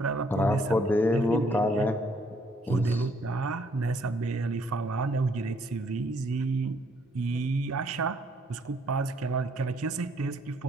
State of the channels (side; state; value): both; normal; correlation 0.66